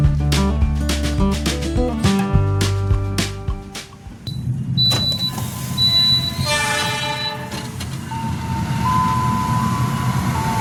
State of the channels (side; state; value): both; identical; correlation 1.00